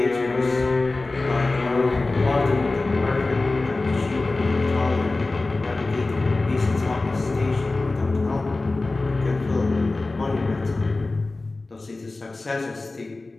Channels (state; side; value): quieter; right; 3.3 dB